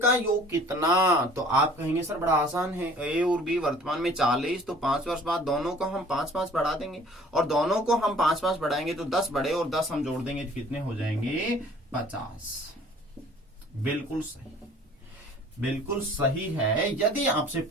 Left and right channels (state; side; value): normal; both; correlation 0.52